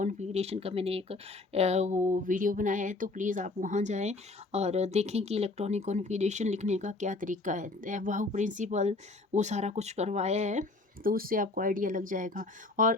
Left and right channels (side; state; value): right; quieter; 3.3 dB